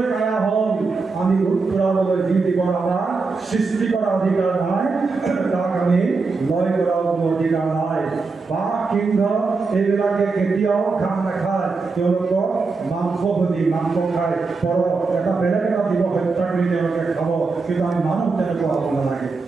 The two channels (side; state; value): left; quieter; 4.2 dB